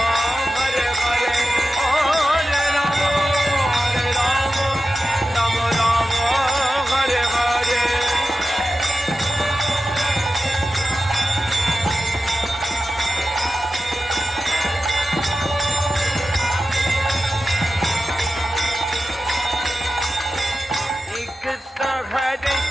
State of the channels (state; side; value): normal; both; correlation 0.93